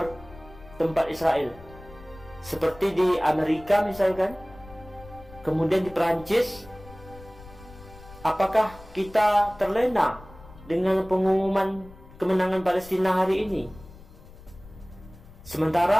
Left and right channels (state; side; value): noise; left; rumble, 20 dB below the sound